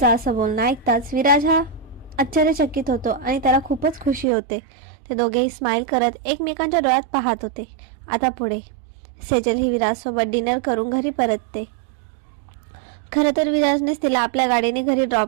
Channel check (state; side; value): drops out; left; at 4.2 s